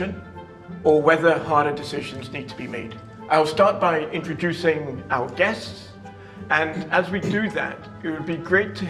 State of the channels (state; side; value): identical; both; correlation 1.00